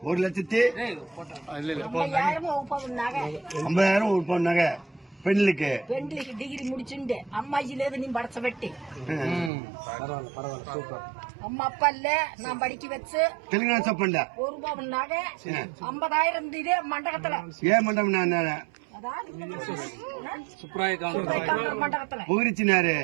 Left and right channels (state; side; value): drops out; left; at 9.5 s